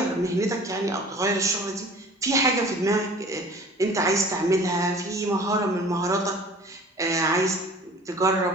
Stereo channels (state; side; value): normal; both; correlation 0.46